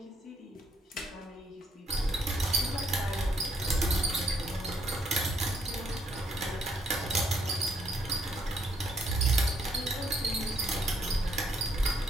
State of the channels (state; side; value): normal; both; correlation 0.71